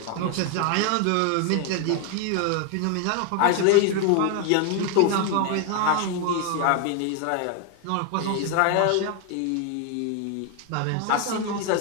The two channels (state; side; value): different; both; correlation 0.01